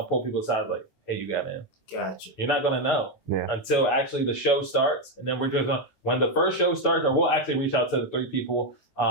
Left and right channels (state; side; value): late; right; 15 ms